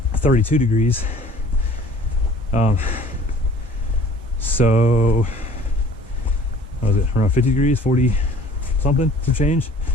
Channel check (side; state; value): both; normal; correlation 0.50